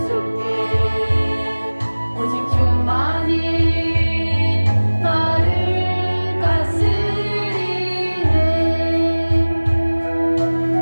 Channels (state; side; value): inverted; both; correlation -1.00